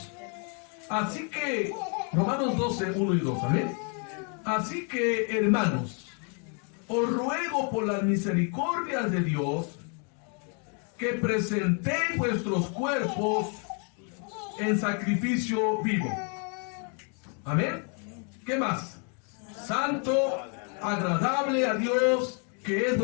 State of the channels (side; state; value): right; quieter; 39.5 dB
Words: Así que, Romanos 12, 1 y 2, amén. Así que, hermanos, os ruego por las misericordias de Dios que presentéis vuestros cuerpos en sacrificio vivo. Amén. ¿Qué más? Santo, agradable a Dios, que es